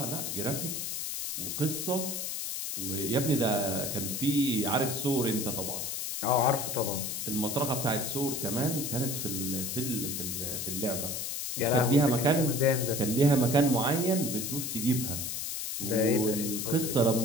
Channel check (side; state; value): left; noise; hiss, 3 dB below the sound